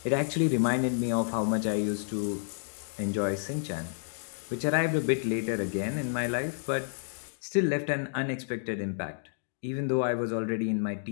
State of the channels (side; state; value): right; silent; digital silence